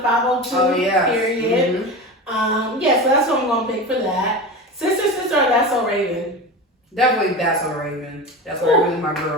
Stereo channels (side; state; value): both; normal; correlation 0.27